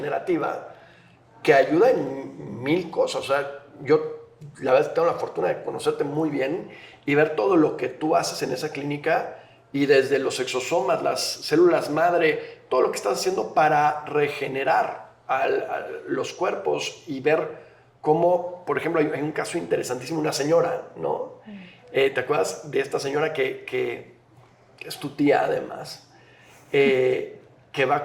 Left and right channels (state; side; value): identical; both; correlation 1.00